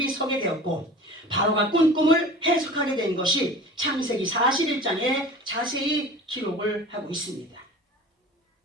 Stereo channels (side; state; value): both; normal; correlation 0.39